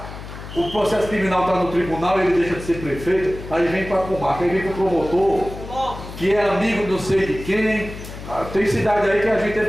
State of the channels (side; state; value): left; noise; hum, 12 dB below the sound